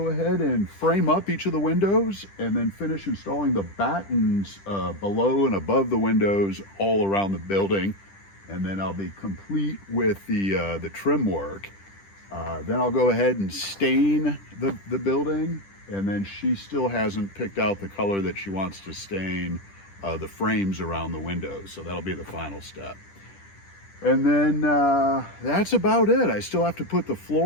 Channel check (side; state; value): right; late; 10 ms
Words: ahead and frame up each of the windows and then finish installing the battens below and above the windows all around the building. And then I'll be complete with the trim work. Then I'll go ahead and stain the building, and then she still hasn't picked out the color that she wants to stain the frames around the windows. So that'll be the final step. And then that's about it. I still have to put the